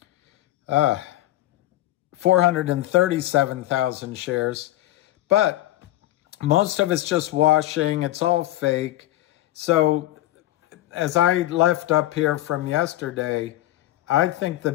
437,000 shares. But most of it's just washing. It's all fake. So as I left up here from yesterday, I think the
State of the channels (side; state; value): right; quieter; 15.6 dB